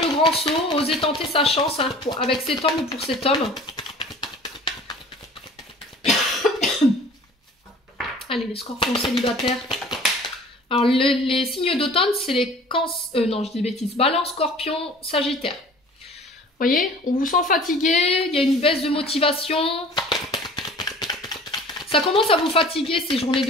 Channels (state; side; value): normal; both; correlation 0.46